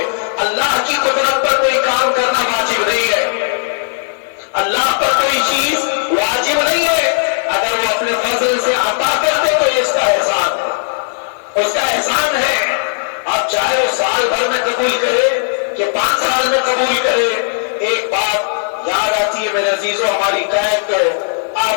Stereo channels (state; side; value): silent; right; digital silence